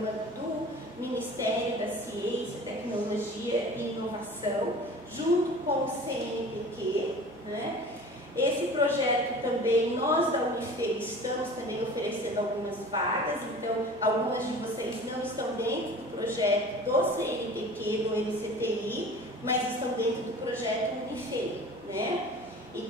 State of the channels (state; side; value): normal; both; correlation 0.41